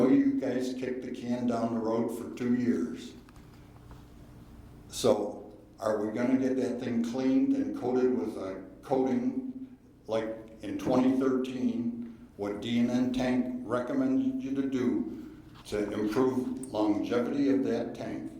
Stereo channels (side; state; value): both; identical; correlation 1.00